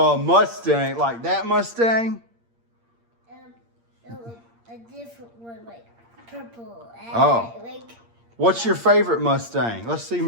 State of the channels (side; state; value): left; late; 8.6 ms